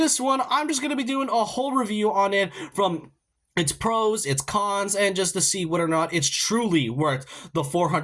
one, I'm just going to be doing a whole review on it from its pros, its cons, and just to see whether or not it's truly worth the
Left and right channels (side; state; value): both; identical; correlation 1.00